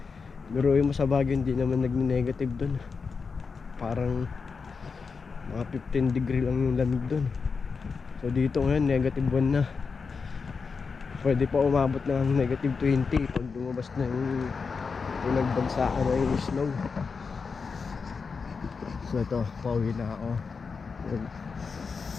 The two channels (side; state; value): right; quieter; 5.1 dB